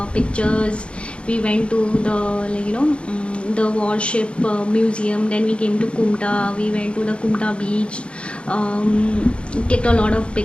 pictures. We went to the the warship museum. Then we came to Kumta. We went to the Kumta beach. Clicked a lot of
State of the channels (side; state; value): right; late; 0.058 ms